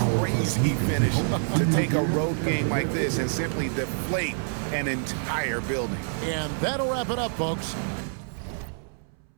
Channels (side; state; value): left; silent; 60 dB below the other